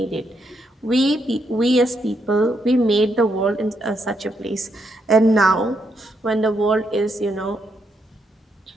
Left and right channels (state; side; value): normal; both; correlation 0.79